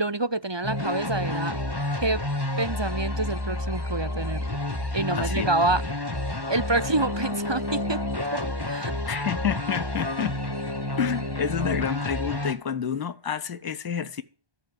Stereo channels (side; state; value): left; late; 1.2 ms